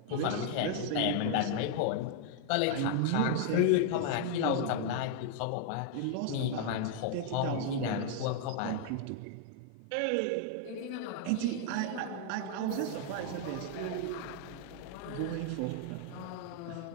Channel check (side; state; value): both; different; correlation 0.00